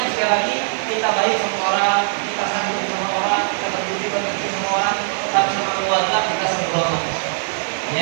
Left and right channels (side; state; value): left; silent; digital silence